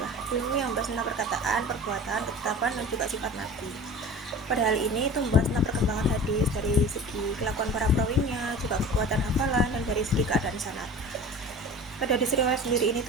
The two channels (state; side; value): normal; both; correlation 0.38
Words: ilmu yang membahas tentang perkataan, perbuatan, ketetapan, dan juga sifat Nabi. Pada hal ini itu membahas tentang perkembangan hadis dari segi kelakuan para perawinya, juga kekuatan hafalan, dan dari segi keadaan sanad. Pada hadis riwayat sendiri ini